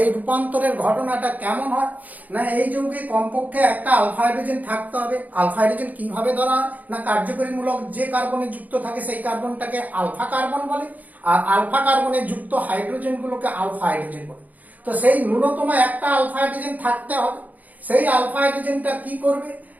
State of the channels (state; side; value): late; left; 0.079 ms